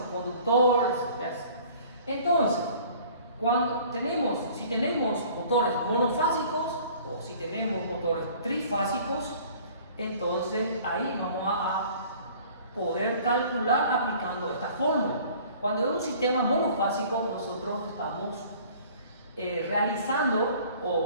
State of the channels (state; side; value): inverted; both; correlation -0.50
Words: conductores, etc. Entonces, si tenemos motores monofásicos o si tenemos motores trifásicos, entonces ahí vamos a poder calcular aplicando esta fórmula. Cuando es un sistema monofásico, nosotros estamos realizando